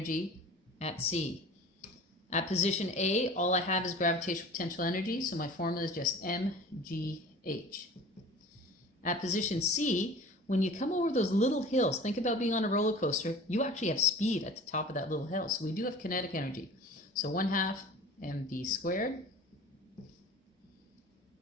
at C. At position A, all I have is gravitational potential energy, so my formula is just mgh. At position C, when you come over those little hills, think about being on a roller coaster, you actually have speed at the top of that little hill. So we do have kinetic energy. So 1/2 mv squared.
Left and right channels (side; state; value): both; normal; correlation 0.41